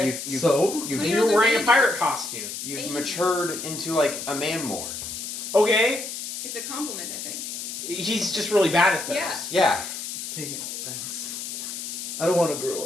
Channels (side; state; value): left; noise; hiss, 7 dB below the sound